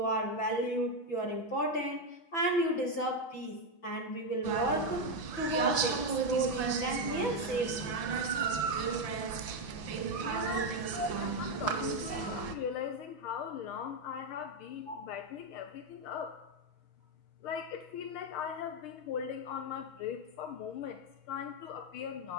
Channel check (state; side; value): late; right; 5.9 ms